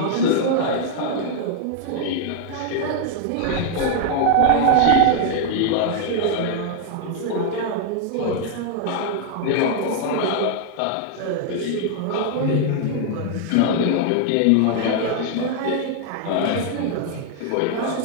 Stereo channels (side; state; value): both; different; correlation 0.00